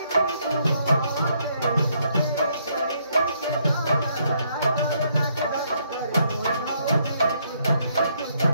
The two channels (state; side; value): inverted; both; correlation -0.72